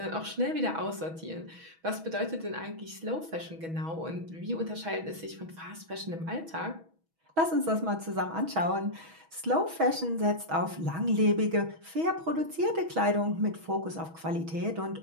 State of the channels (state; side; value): late; left; 6.2 ms